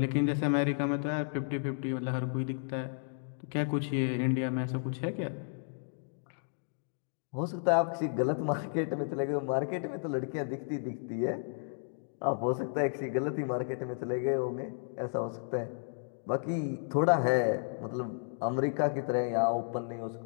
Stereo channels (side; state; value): right; silent; digital silence